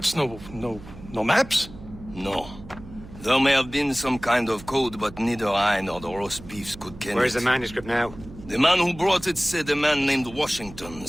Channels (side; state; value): right; noise; hum, 17 dB below the sound